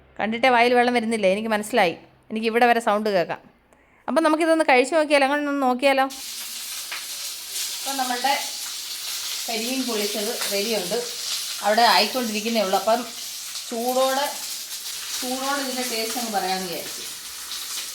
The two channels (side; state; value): both; identical; correlation 1.00